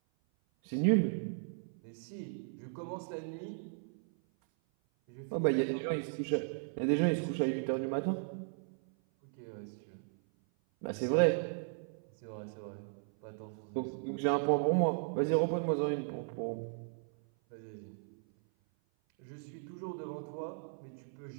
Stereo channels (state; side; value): silent; left; 54 dB below the other